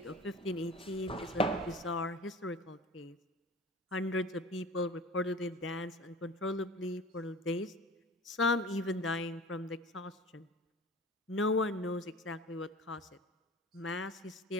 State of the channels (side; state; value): both; normal; correlation 0.39